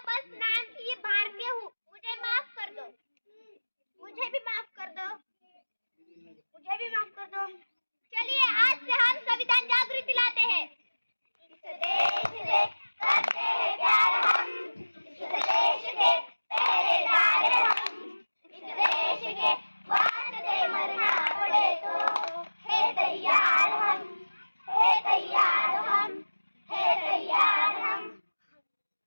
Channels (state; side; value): inverted; both; correlation -1.00